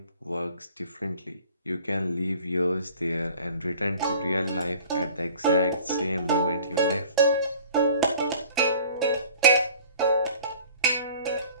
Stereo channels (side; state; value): both; inverted; correlation -0.48